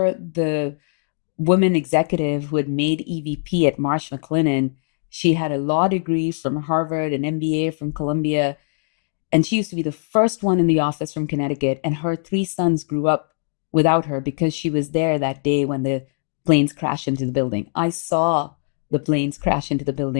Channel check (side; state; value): right; silent; digital silence